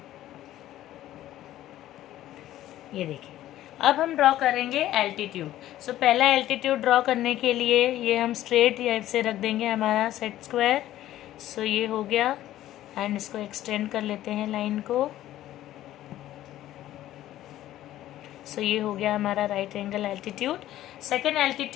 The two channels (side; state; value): right; quieter; 13.7 dB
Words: ये देखिए अब हम ड्रॉ करेंगे एल्टीट्यूड। पहला एल्टीट्यूड ड्रॉ करने के लिए ये हम स्ट्रेट से रख देंगे हमारा सेट स्क्वायर। ये हो गया एंड इसको एक्सटेंड कर लेते हैं लाइन को। ये हो गया हमारा right angle altitude. Second